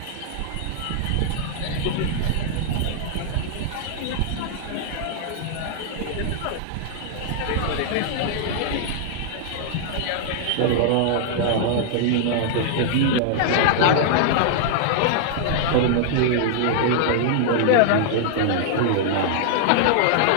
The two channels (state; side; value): different; both; correlation -0.01